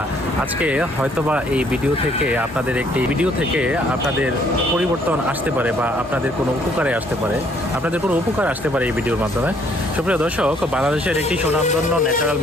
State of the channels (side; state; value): both; normal; correlation 0.64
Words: আজকে হয়তোবা এই ভিডিও থেকে আপনাদের পরিবর্তন আসতে পারে, বা আপনাদের কোনো উপকারে আসতে পারে, এই ভিডিওর মাধ্যমে। সুপ্রিয় দর্শক, বাংলাদেশের একটি সুনামধন্য ন্যাচারাল